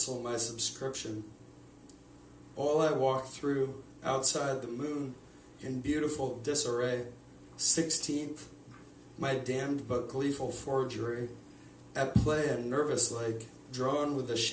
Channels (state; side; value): identical; both; correlation 1.00